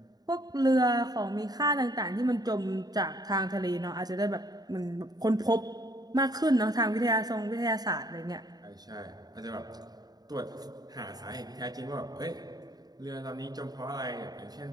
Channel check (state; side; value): late; left; 0.19 ms